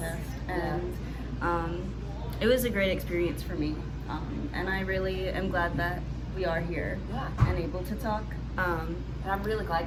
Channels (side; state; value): both; identical; correlation 1.00